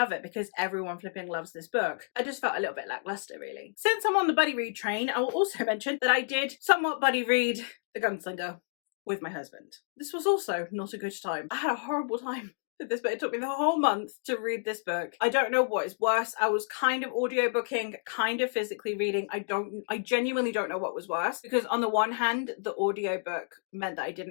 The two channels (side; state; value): right; silent; digital silence